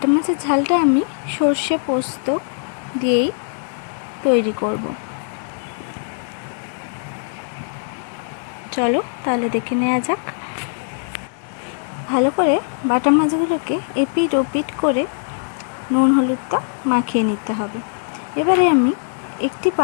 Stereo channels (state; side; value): silent; right; 65 dB below the other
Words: মাছের ঝালটা আমি সর্ষে পোস্ত দিয়েই তৈরি করব। চলো তাহলে দেখে নেওয়া যাক। ভালো করে বাটা মাছগুলোকে এপিট ওপিট করে নুন হলুদটা মাখিয়ে নিতে হবে। এবারে আমি একটি